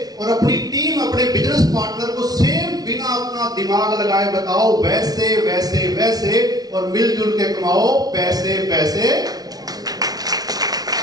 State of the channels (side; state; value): left; late; 0.19 ms